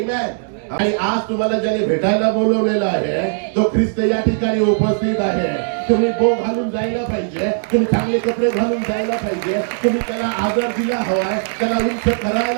आणि आज तुम्हाला ज्याने भेटायला बोलवलेलं आहे तो ख्रिस्त या ठिकाणी उपस्थित आहे. तुम्ही बो घालून जायला पाहिजे, तुम्ही चांगले कपडे घालून जायला पाहिजे, तुम्ही त्याला आदर दिला हवाय, त्याला उंच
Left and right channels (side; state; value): left; silent; digital silence